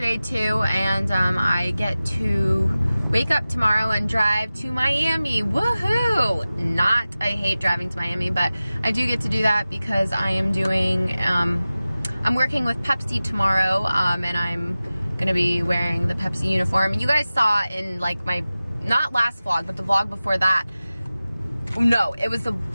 too, and I get to wake up tomorrow and drive to Miami. Woohoo! I hate driving to Miami, but I do get to do that because I am doing, I'm working with Pepsi tomorrow, and I'm gonna be wearing the Pepsi uniform. You guys saw in like my, not last vlog, but the vlog before that. No, it was the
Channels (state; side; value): inverted; both; correlation -0.96